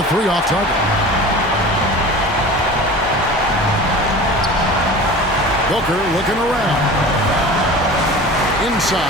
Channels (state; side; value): normal; both; correlation 0.37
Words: 3 off target. Booker looking around.